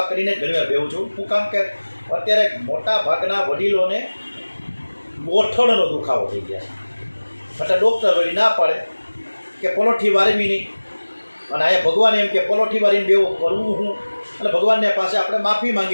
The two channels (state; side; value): inverted; both; correlation -1.00